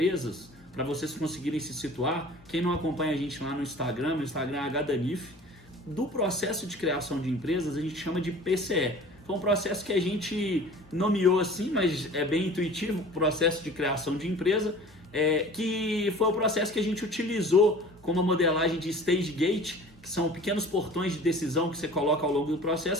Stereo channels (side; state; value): left; noise; hum, 29 dB below the sound